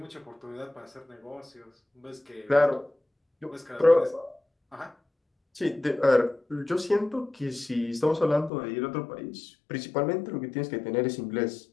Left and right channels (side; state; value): right; drops out; at 8.5 s